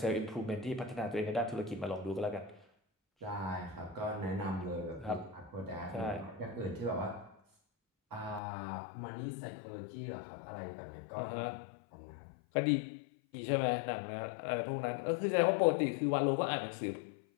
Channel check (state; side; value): drops out; right; at 8.4 s